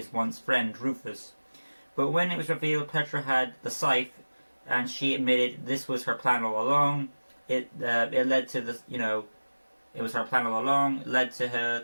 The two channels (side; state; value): both; inverted; correlation -1.00